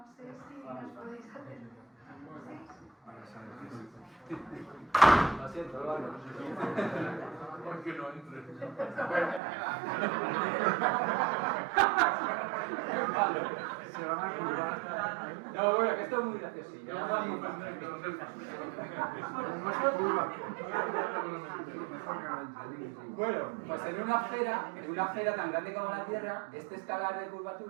sé si nos podéis hacer. ¿Sí? Lo siento, lo hago. Porque no entre. Se van a curvar. No, bueno, que esto es muy graciosillo. Bueno, pues en una esfera tan grande como la Tierra, este escalar de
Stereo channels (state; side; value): drops out; left; at 9.4 s